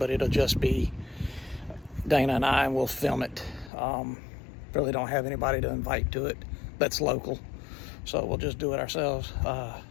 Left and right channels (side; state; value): right; drops out; at 3.7 s